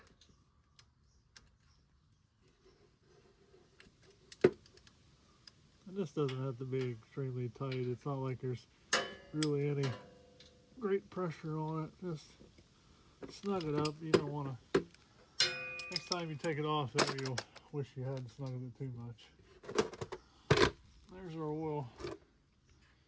And this doesn't have to be extremely tight. It's not like there's really any great pressure on it. Just snug it up. You don't want to. Next time you take it off there, you'll wish you hadn't snuggled it too much. There's our oil.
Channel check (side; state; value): both; identical; correlation 1.00